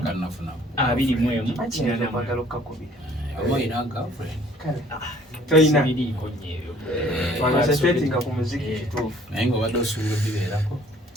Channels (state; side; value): normal; both; correlation 0.56